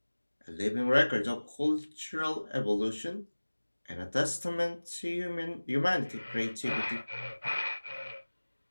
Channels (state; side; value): inverted; both; correlation -1.00